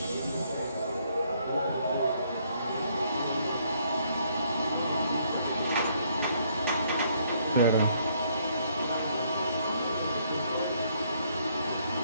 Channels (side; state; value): both; inverted; correlation -0.68